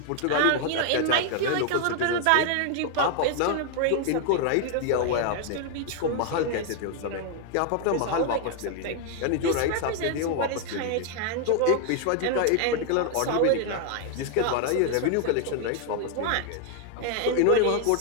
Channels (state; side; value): different; both; correlation 0.00